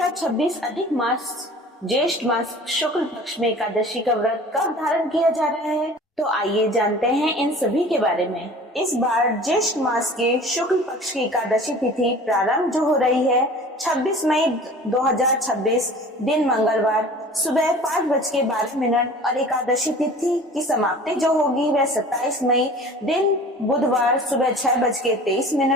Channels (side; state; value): both; normal; correlation 0.43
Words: अधिक मास ज्येष्ठ मास शुक्ल पक्ष में एकादशी का व्रत कब धारण किया जा रहा है। तो आइए जानते हैं इन सभी के बारे में। इस बार ज्येष्ठ मास के शुक्ल पक्ष की एकादशी तिथि प्रारंभ जो हो रही है 26 मई 2026 दिन मंगलवार सुबह 5:12 और एकादशी तिथि की समाप्ति जो होगी वह 27 मई दिन बुधवार सुबह